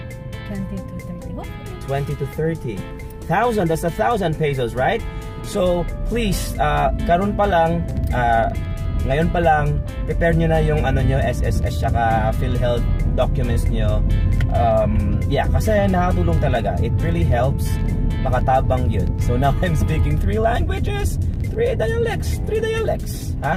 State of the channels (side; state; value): both; identical; correlation 1.00